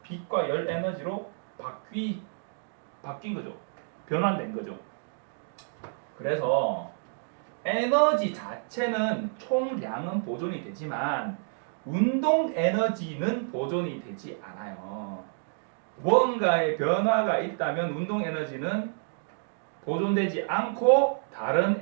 빛과 열 에너지로 바뀐 거죠. 변환된 거죠. 그래서 에너지 자체는 총량은 보존이 되지만 운동 에너지는 보존이 되지 않아요. 무언가의 변화가 있다면 운동 에너지는 보존되지 않고 다른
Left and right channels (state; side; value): silent; left; digital silence